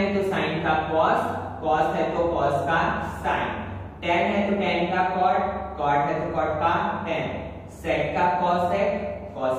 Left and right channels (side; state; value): both; identical; correlation 1.00